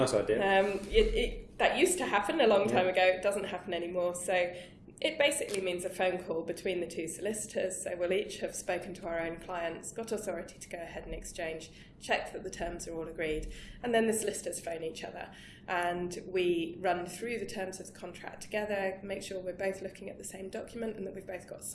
idea. That used to happen a long time ago. It doesn't happen anymore. So it basically means a phone call between the two solicitors. So we'll each have spoken to our own clients, got authority to go ahead and exchange, check that the terms are all agreed, and then the solicitors phone each other. And we run through the terms of the contract together, make sure we're both looking at the same document and that we've both got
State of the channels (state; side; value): identical; both; correlation 1.00